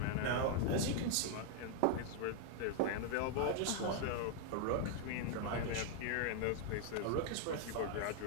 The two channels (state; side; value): different; both; correlation 0.00